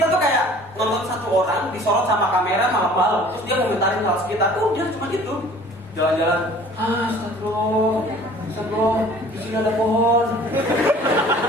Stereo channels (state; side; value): normal; both; correlation 0.49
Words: tuh kayak nonton satu orang disorot sama kamera malam-malam, terus dia komentarin hal sekitar. Udah cuma itu. Jalan-jalan, astagfirullah, di sini ada pohon.